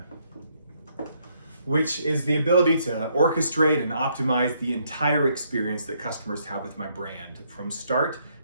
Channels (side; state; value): both; inverted; correlation -0.72